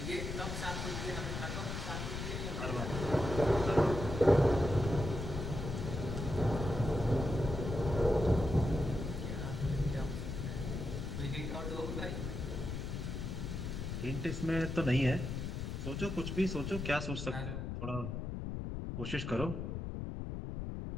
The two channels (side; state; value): left; noise; rumble, 4 dB below the sound